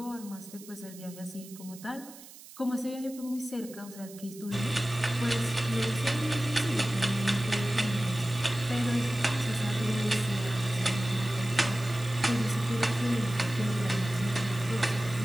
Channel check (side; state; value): right; noise; hiss, 18 dB below the sound